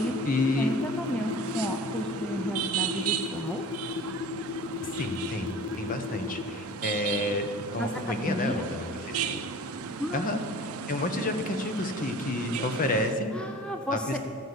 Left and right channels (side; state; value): both; normal; correlation 0.41